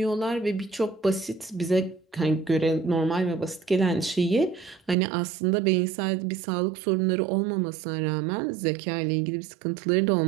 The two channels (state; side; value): drops out; left; at 5.0 s